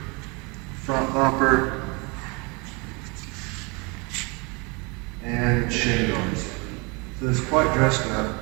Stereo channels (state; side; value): quieter; left; 29.2 dB